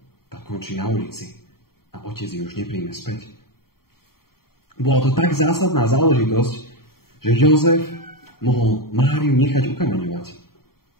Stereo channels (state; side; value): late; right; 0.93 ms